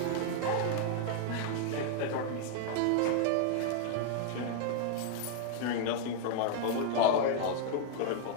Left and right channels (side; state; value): both; different; correlation 0.00